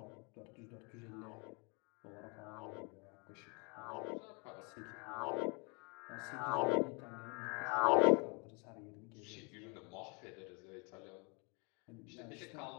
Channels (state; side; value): quieter; right; 33.0 dB